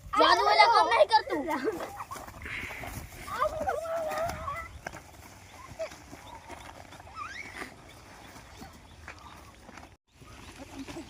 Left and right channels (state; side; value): identical; both; correlation 1.00